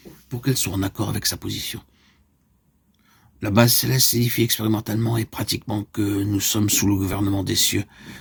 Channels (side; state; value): both; identical; correlation 1.00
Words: pour qu'elle soit en accord avec sa position. La base céleste signifie expérimentalement et pratiquement que nous sommes sous le gouvernement des cieux,